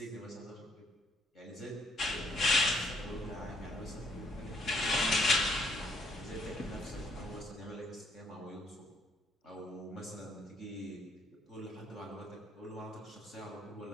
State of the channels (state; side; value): normal; both; correlation 0.68